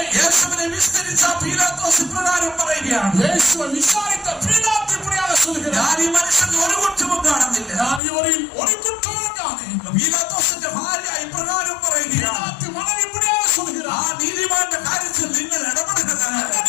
യേശുവിനെ വിസ്തരിച്ച പീലാത്തോസ് ഇപ്രകാരം പറയുകയാണ്, യേശുവെ വിசாரித்த பிலாத்து இப்படியாக சொல்கிறார், ഞാൻ ഈ മനുഷ്യന് ഒരു കുറ്റവും കാണുന്നില്ല. நான் இவரில் ஒரு குற்றமும் காணேன். പീലാത്തോസിന്റെ ഭാര്യ ഇപ്രകാരം പറയുകയാണ്, பிலாத்து மனைவி இப்படியாக ആ சொல்கிறார், നീതിമാന്റെ കാര്യത്തിൽ നിങ്ങൾ ഇടപെടരുത്. அந்த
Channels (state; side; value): drops out; right; at 8.0 s